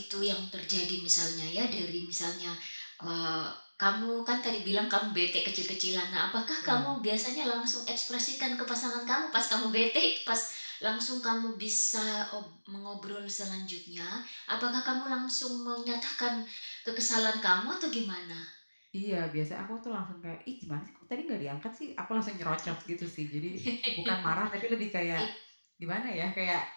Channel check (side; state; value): both; inverted; correlation -1.00